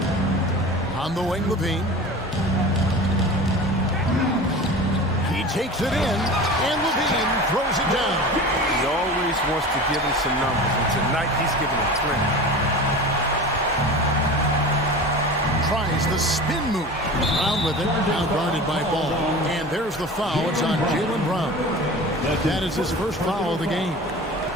On the wing, Levine. He takes it in, and Levine throws it down. He always wants to give him some numbers, and tonight he's giving him plenty. Tries the spin move. Brown with it, now guarded by Ball. And there's the foul. It's on Jaylen Brown. That is his first foul of the game.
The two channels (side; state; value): both; normal; correlation 0.34